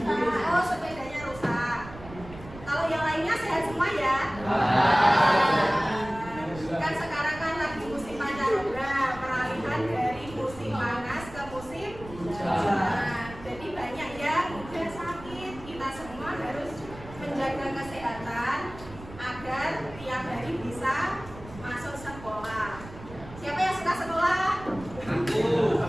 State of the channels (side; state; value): right; noise; rumble, 16 dB below the sound